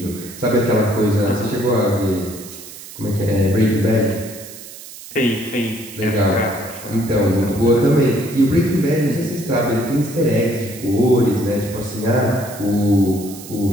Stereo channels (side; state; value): right; noise; hiss, 15 dB below the sound